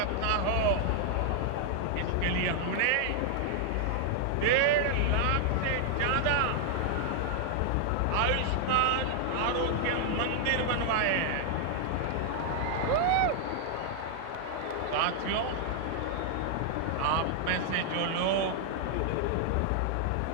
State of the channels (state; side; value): different; both; correlation 0.00